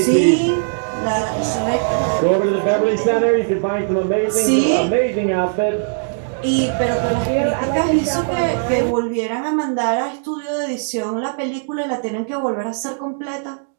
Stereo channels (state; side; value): silent; left; digital silence